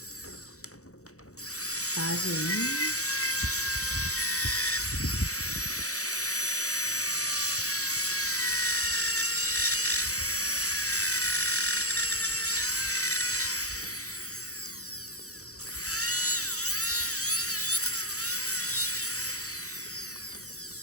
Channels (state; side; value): late; right; 0.65 ms